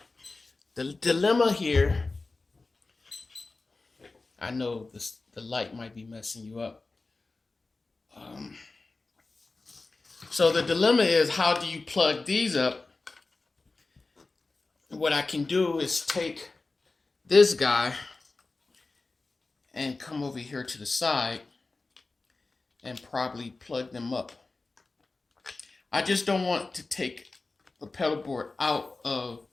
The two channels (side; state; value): right; quieter; 3.5 dB